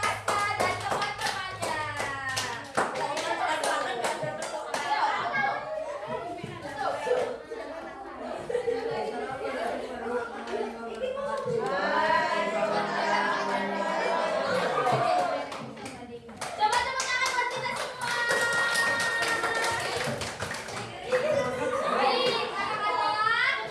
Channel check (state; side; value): identical; both; correlation 1.00